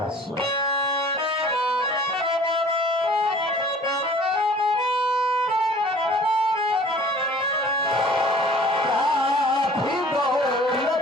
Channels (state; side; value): normal; both; correlation 0.49